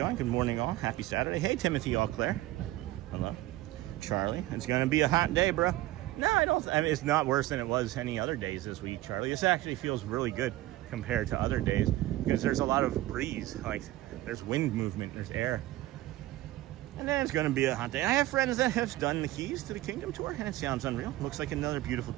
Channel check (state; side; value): quieter; left; 16.4 dB